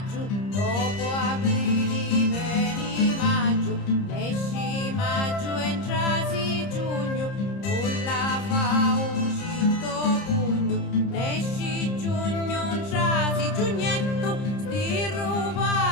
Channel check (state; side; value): late; right; 30 ms